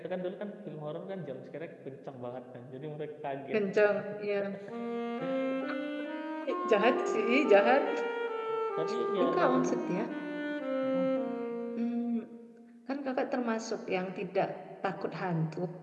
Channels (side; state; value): both; identical; correlation 1.00